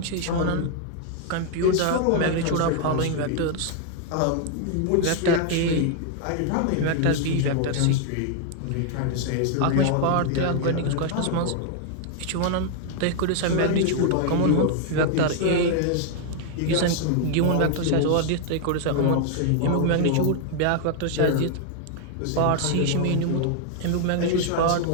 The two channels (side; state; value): both; different; correlation 0.00